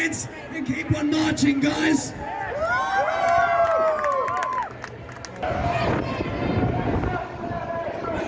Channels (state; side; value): identical; both; correlation 1.00